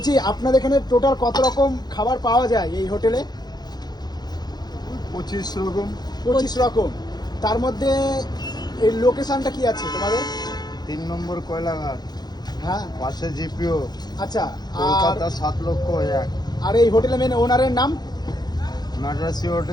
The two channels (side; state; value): right; late; 0.20 ms